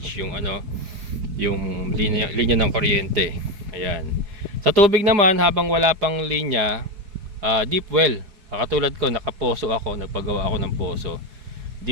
yung yung linya ng kuryente. Ayan. Sa tubig naman, habang wala pang linya, deep well. Katulad ko, nakaposo ako, nagpagawa ako ng poso.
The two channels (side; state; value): left; late; 4.7 ms